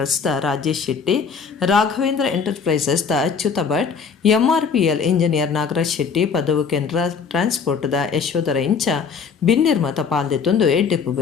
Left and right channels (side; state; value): right; quieter; 5.9 dB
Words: ದ ರಾಜೇಶ್ ಶೆಟ್ಟಿ ರಾಘವೇಂದ್ರ ಎಂಟರ್ಪ್ರೈಸಸ್ ದ Achyuta Bhat MRPL engineer Nagaraj Shetty Padavu Kendra transport the Yashodhara ಇಂಚ ಬಿನ್ನಿರ್ಮತ ಪಾಲ್ದೆತ್ತೊಂದು ಎಡ್ಡೆಪ್ಪು